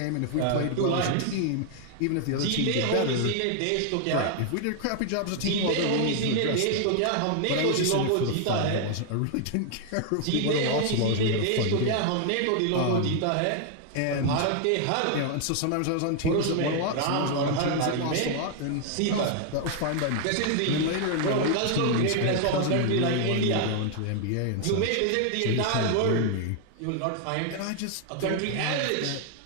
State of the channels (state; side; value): different; both; correlation 0.00